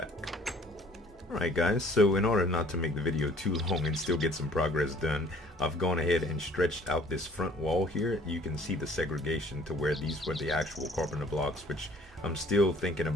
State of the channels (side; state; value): both; normal; correlation 0.54